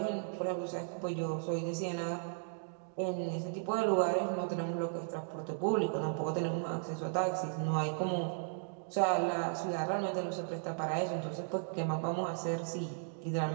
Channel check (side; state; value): left; silent; digital silence